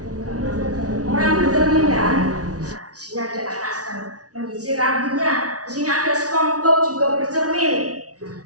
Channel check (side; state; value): left; late; 0.68 ms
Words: Orang bercermin kan? Nah, di sini ada anak sedang menyisir rambutnya. Di sini ada SpongeBob juga bercermin.